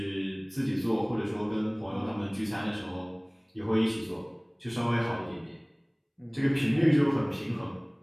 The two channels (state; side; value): identical; both; correlation 1.00